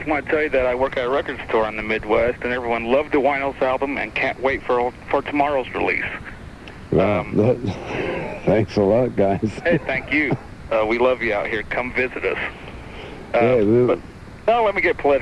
I want to tell you that I work at a record store in the Midwest, and everyone loved the Winos album and can't wait for tomorrow's release. Well, thanks a lot, guys. Hey, thank you. We love you out here. Come visit us. Yeah, Now let me get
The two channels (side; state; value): both; identical; correlation 1.00